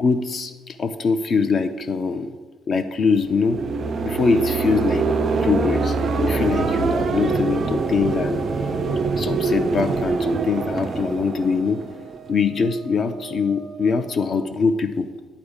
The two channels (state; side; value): normal; both; correlation 0.76